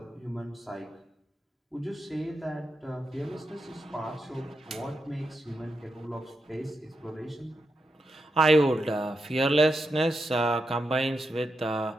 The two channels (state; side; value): normal; both; correlation 0.86